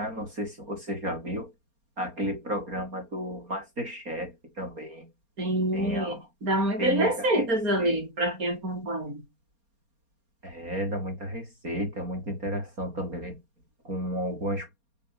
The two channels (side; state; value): left; late; 4.3 ms